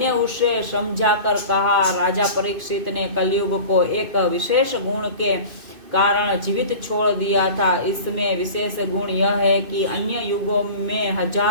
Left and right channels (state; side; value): late; left; 2.5 ms